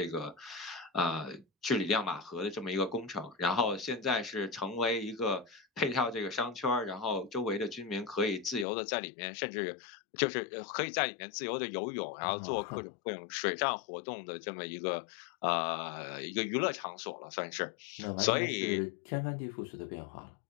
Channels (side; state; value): right; drops out; at 8.7 s